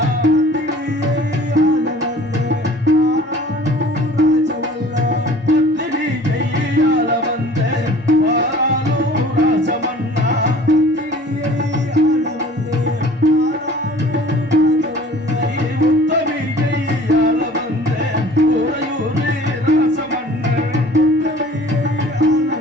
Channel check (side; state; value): both; normal; correlation 0.48